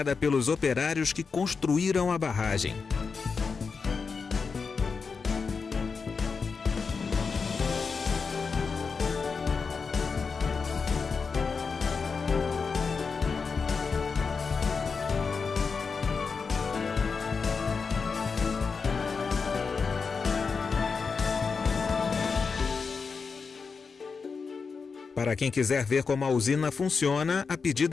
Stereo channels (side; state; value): right; quieter; 5.1 dB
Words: pelos operários que construíram a barragem. Para quem quiser ver como a usina funciona, a